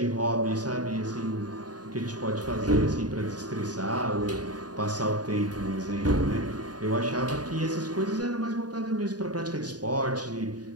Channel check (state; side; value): late; left; 0.68 ms